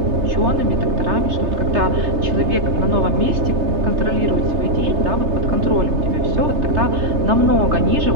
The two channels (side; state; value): left; late; 3.3 ms